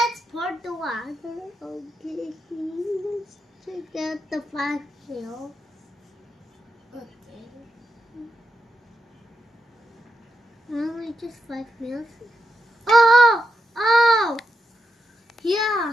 pour the water. Okay, let's check out the 5 ml. Okay. Only just 5 ml. Oh! Oh!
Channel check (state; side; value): normal; both; correlation 0.85